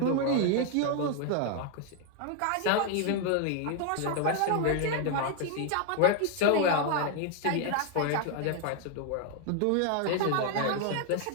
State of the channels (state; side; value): different; both; correlation 0.00